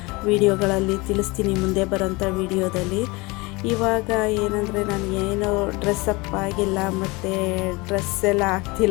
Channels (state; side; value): quieter; right; 24.6 dB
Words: ವೀಡಿಯೋಗಳಲ್ಲಿ ತಿಳಿಸ್ತೀನಿ, ಮುಂದೆ ಬರೋಂಥ ವೀಡಿಯೋದಲ್ಲಿ. ಇವಾಗ ಏನಂದರೆ ನನಗೇನು ಡ್ರೆಸ್ಸಪ್ ಆಗಿಲ್ಲ, ಮತ್ತು ಡ್ರೆಸ್ ಎಲ್ಲ